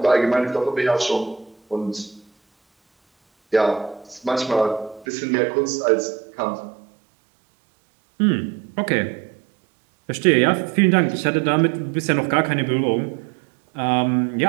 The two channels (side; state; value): left; drops out; at 5.1 s